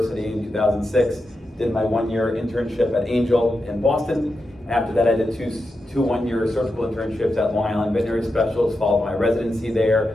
in 2006, did my 1-year internship at Angel in Boston. After that, I did two 1-year surgical internships at Long Island Veterinary Specialists, followed my residency there.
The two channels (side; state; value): both; normal; correlation 0.88